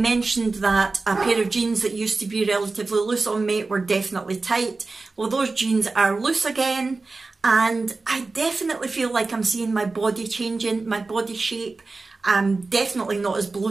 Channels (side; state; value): left; quieter; 3.7 dB